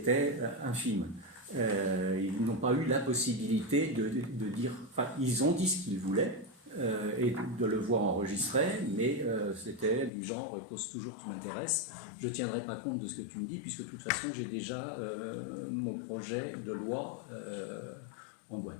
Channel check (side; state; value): right; drops out; at 10.1 s